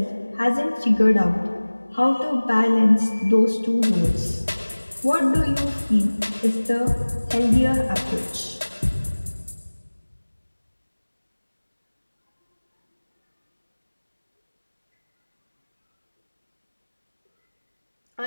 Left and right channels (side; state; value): both; inverted; correlation -1.00